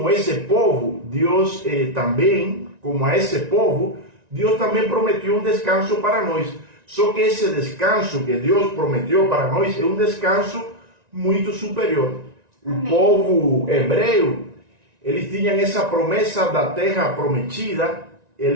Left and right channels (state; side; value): late; left; 1.9 ms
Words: esse povo, Deus também, como a esse povo, Deus também prometeu um descanso para nós. Só que esse descanso que Deus prometeu para nós é um descanso muito superior. O povo hebreu, eles tinham essa promessa da terra prometida,